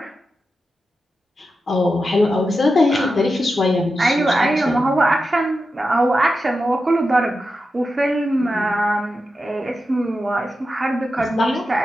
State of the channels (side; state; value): both; normal; correlation 0.90